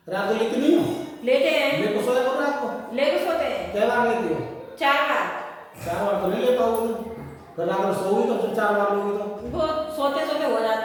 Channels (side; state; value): both; identical; correlation 1.00